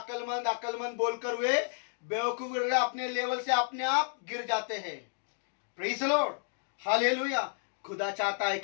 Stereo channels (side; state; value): right; silent; 57 dB below the other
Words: बोलकर वे बेवकूफ अपने लेवल से अपने आप गिर जाते हैं। Praise the Lord, hallelujah. खुदा चाहता है